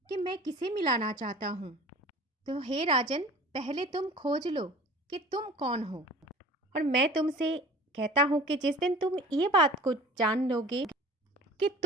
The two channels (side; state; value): both; normal; correlation 0.44